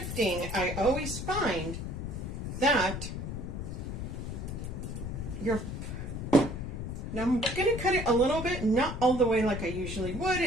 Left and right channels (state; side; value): noise; left; rumble, 5 dB below the sound